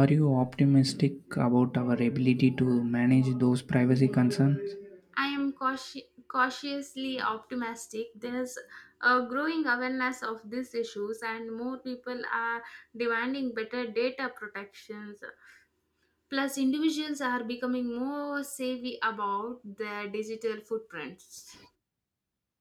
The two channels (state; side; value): identical; both; correlation 1.00